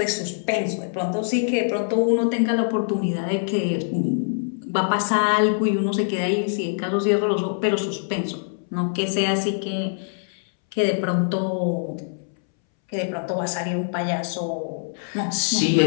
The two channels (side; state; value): right; silent; 63 dB below the other